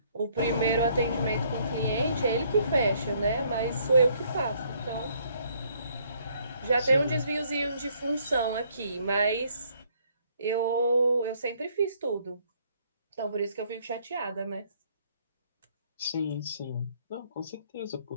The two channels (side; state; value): both; inverted; correlation -0.66